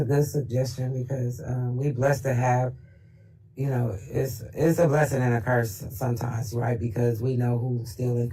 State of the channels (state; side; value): identical; both; correlation 1.00